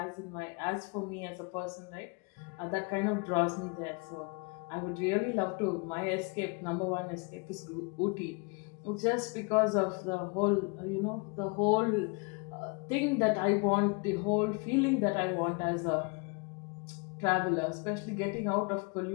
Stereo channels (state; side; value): quieter; right; 32.0 dB